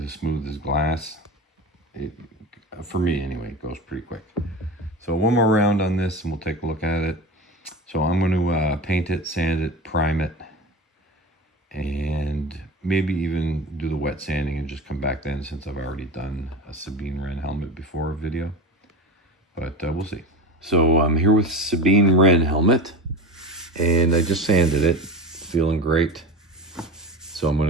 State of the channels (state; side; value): normal; both; correlation 0.28